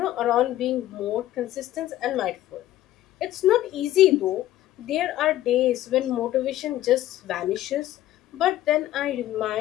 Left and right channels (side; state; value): right; quieter; 14.1 dB